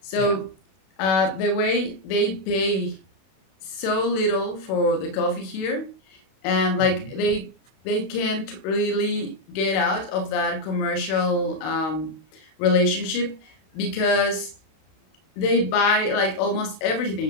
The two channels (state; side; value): late; right; 32 ms